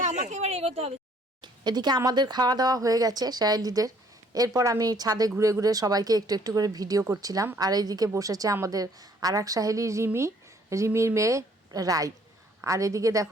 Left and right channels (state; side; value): normal; both; correlation 0.62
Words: আমাকে এবার এগোতে হবে। এদিকে আমাদের খাওয়া দাওয়া হয়ে গেছে সাহেলিদের। এরপর আমি ছাদে ঘুরে ঘুরে সবাইকে একটু একটু করে ভিডিও করছিলাম। আর এইদিকে বসেছে আমাদের আর এক সাহেলি রিমির মেয়ে রাই। আর এদিকে